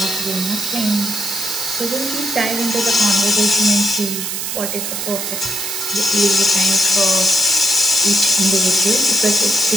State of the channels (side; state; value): right; noise; hiss, 4 dB below the sound